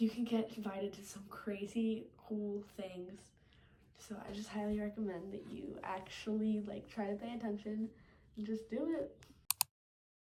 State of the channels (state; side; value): identical; both; correlation 1.00